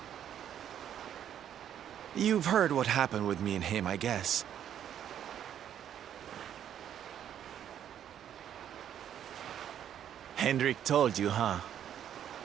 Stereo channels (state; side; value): quieter; left; 9.9 dB